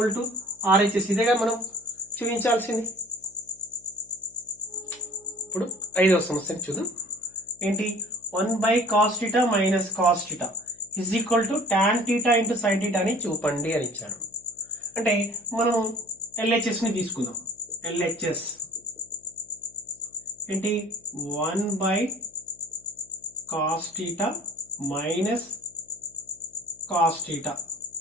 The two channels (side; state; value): left; noise; hum, 30 dB below the sound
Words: to RHS. ఇదేగా మనం చూపించాల్సింది. ఇప్పుడు 5వ సమస్యని చూద్దాం. ఏంటి 1 by cos theta minus cos theta is equal to tan theta into sine theta అని చూపండి అని ఇచ్చాడు. అంటే మనం ఎల్హెచ్ఎస్ ని తీసుకుందాం. ఎల్హెచ్ఎస్ ఏంటి 1 by cos theta minus cos theta,